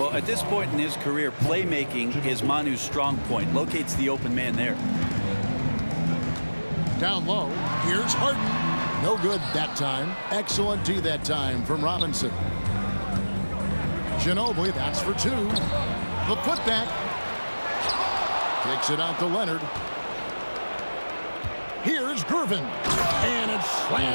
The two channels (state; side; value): inverted; both; correlation -1.00